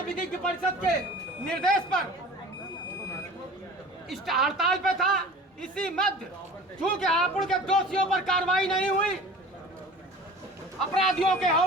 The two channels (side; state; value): both; normal; correlation 0.41